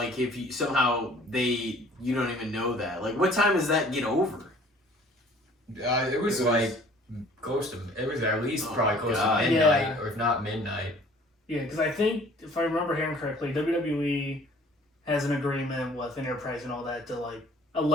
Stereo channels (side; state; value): both; normal; correlation 0.53